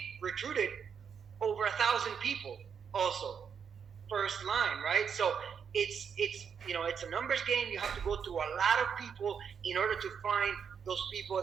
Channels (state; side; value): quieter; left; 7.0 dB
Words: recruited over 1,000 people also first line, right? So it's a numbers game. You have to go through a lot of people in order to find those people